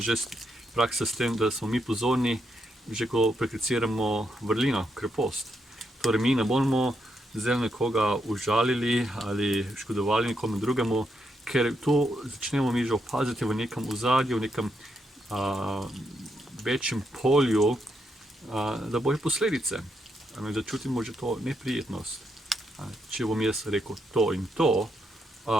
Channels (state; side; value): normal; both; correlation 0.80